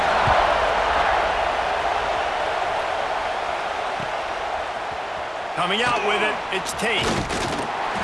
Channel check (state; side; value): identical; both; correlation 1.00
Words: Coming out with it, it's Tate.